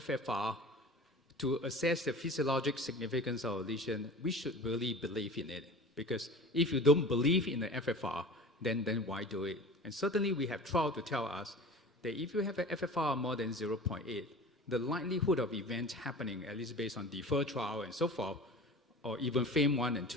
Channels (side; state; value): both; normal; correlation 0.38